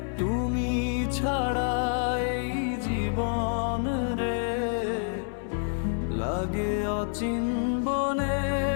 তুমি ছাড়া এই জীবন রে লাগে অচিনবনে।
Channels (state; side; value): silent; right; 59 dB below the other